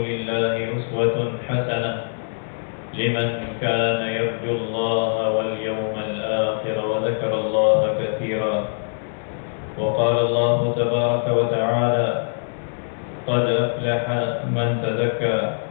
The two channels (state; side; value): silent; right; 63 dB below the other